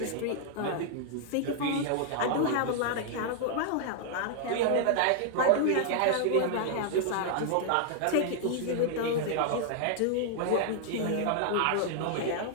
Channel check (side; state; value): both; different; correlation 0.00